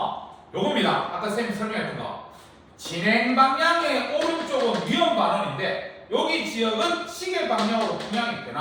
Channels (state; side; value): identical; both; correlation 1.00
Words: 요겁니다. 아까 쌤이 설명했던 거. 진행 방향의 오른쪽은 위험 반원인데 여기 지역은 시계 방향으로 풍향이